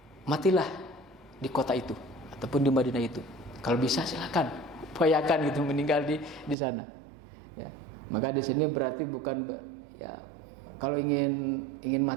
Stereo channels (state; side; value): drops out; left; at 6.6 s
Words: matilah di kota itu ataupun di Madinah itu. Kalau bisa silakan, upayakan gitu meninggal di sana. Ya. Maka di sini berarti bukan, ya, kalau ingin